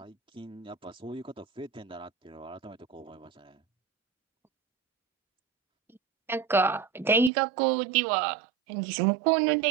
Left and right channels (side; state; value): left; drops out; at 7.3 s